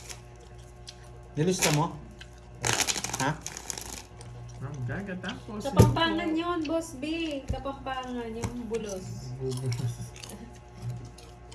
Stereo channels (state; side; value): identical; both; correlation 1.00